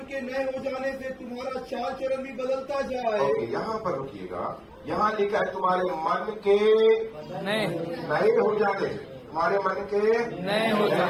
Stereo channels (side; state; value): both; identical; correlation 1.00